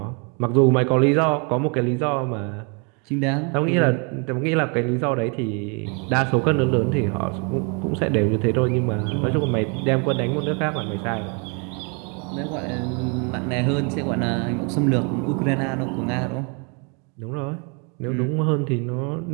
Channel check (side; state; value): left; quieter; 35.0 dB